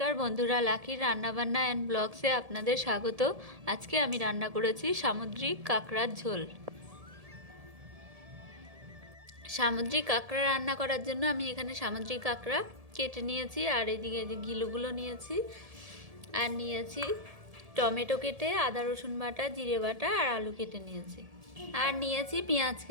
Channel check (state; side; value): late; left; 1.7 ms